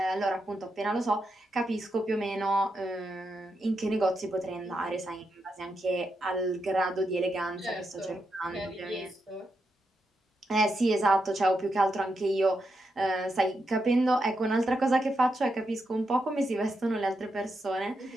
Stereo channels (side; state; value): both; normal; correlation 0.84